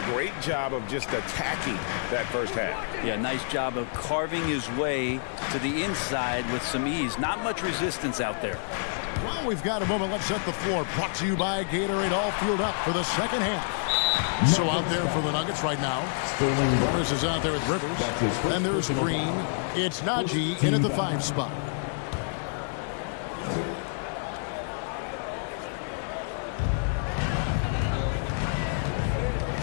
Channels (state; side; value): silent; right; digital silence